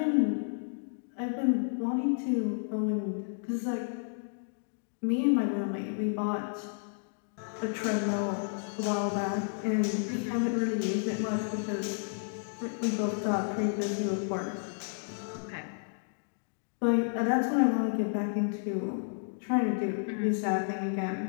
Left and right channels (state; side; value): silent; right; digital silence